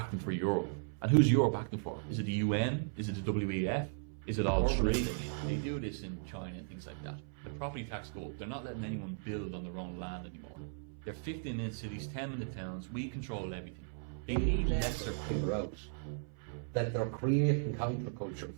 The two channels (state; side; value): silent; left; 53 dB below the other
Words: for Europe. And who's Europe acting for? Is it the UN? Is it the WEF? Is it all three? They do this in China and things like that. The property tax go up. They're not letting anyone build on their own land anymore. They're 15-minute cities, 10-minute towns. We control everything. they'll never figure out that they're creating